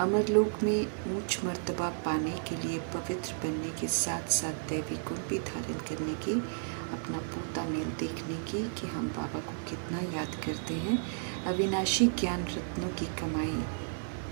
अमरलोक में ऊंच मर्तबा पाने के लिए पवित्र बनने के साथ साथ दैवी गुण भी धारण करने की, अपना पोता मेल देखने की कि हम बाबा को कितना याद करते हैं, अविनाशी ज्ञान रत्नों की कमाई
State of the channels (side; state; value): left; silent; digital silence